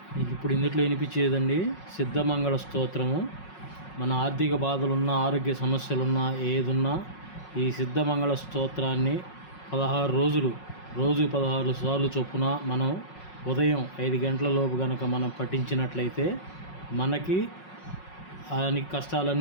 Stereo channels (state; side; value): late; right; 5.5 ms